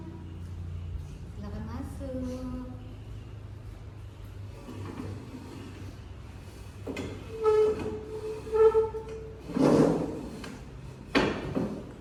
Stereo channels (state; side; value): identical; both; correlation 1.00